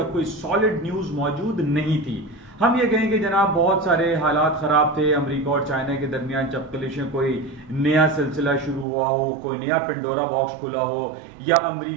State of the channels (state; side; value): drops out; left; at 8.8 s